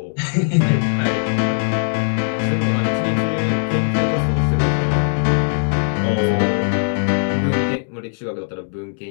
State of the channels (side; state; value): right; silent; digital silence